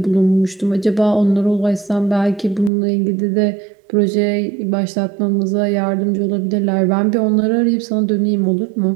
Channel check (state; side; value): drops out; left; at 2.7 s